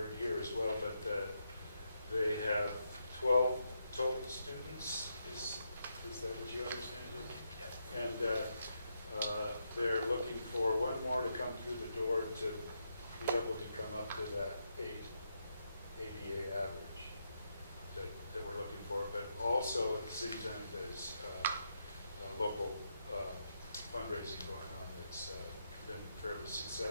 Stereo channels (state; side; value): inverted; both; correlation -0.81